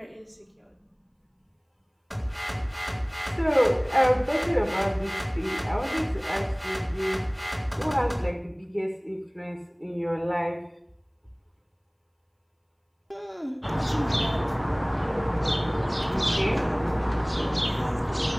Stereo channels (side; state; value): both; identical; correlation 1.00